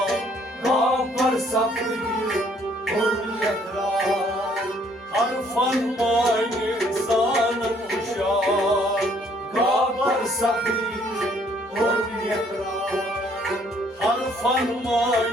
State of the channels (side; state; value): both; normal; correlation 0.63